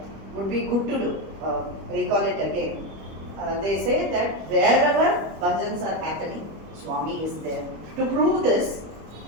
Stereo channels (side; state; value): left; late; 25 ms